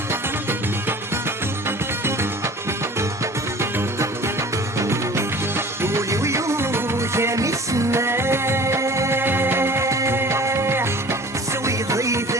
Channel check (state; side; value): normal; both; correlation 0.44